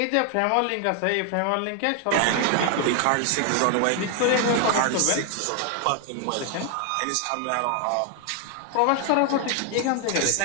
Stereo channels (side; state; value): both; different; correlation 0.00